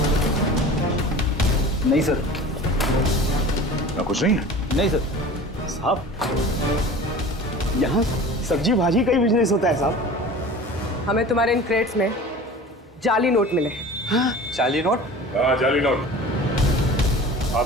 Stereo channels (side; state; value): both; normal; correlation 0.39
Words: नहीं सर। ना कुछ नहीं है? नहीं सर। साहब यहाँ सब्जी भाजी का ही बिजनेस होता है साहब। हमें तुम्हारे इन क्रेट्स में जाली नोट मिले। हाँ, जाली नोट? हाँ, जाली नोट।